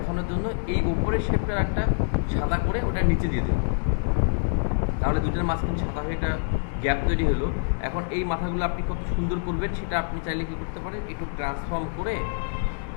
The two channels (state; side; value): silent; right; digital silence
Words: জন্য এই উপরের শেপটার একটা সাদা করে ওটা নিচে দিয়ে দিল, তাহলে দুইটার মাঝখানে সাদা হয়ে একটা গ্যাপ তৈরি হলো। এখন এই মাথাগুলো আপনি কত সুন্দর করবেন সেটা আপনি চাইলে কি করতে পারেন, একটু ট্রান্সফর্ম করে